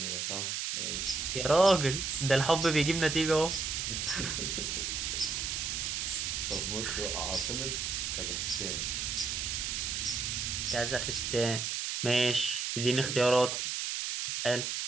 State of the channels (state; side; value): noise; right; hiss, 2 dB below the sound